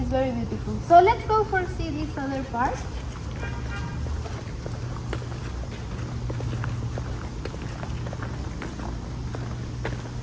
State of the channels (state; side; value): identical; both; correlation 1.00